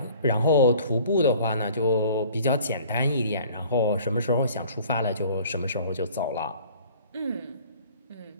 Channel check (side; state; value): both; inverted; correlation -0.50